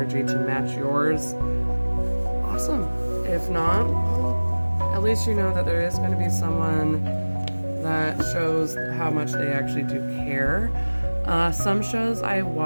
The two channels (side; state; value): both; inverted; correlation -1.00